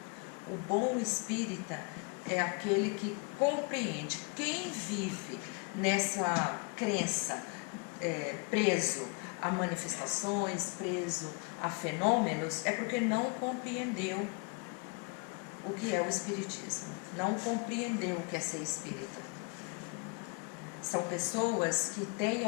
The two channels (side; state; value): right; quieter; 32.6 dB